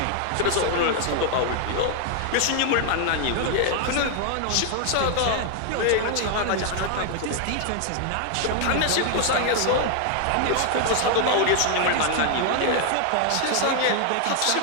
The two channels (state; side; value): different; both; correlation 0.00